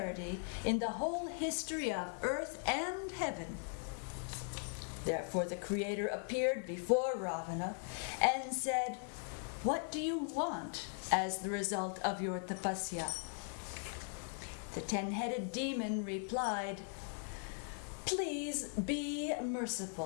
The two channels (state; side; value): silent; right; 51 dB below the other